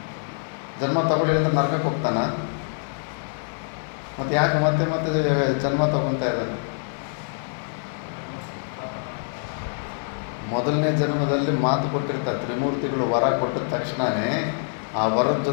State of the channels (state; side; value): silent; right; 62 dB below the other